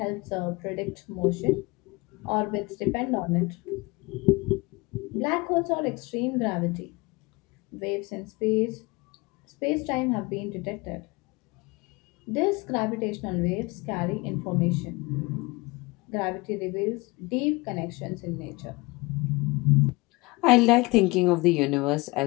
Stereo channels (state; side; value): quieter; right; 24.3 dB